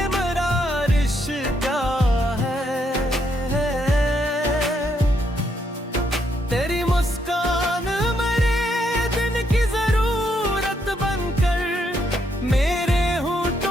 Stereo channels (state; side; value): normal; both; correlation 0.76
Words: मेरा रिश्ता है। तेरी मुस्कान मेरे दिन की जरूरत बनकर मेरे